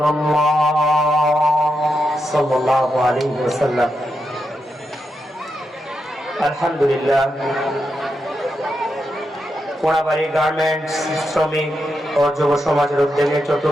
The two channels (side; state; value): both; normal; correlation 0.85